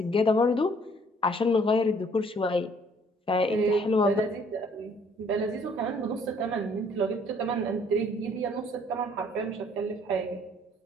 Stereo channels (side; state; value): both; normal; correlation 0.60